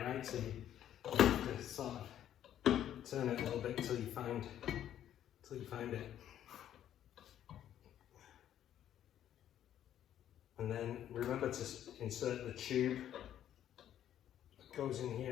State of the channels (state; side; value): quieter; right; 10.9 dB